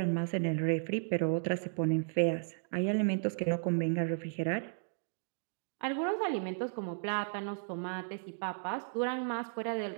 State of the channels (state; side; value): silent; left; digital silence